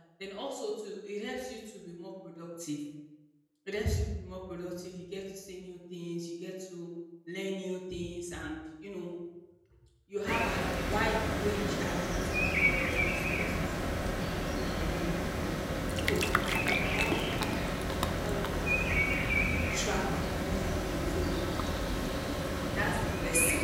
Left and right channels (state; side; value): identical; both; correlation 1.00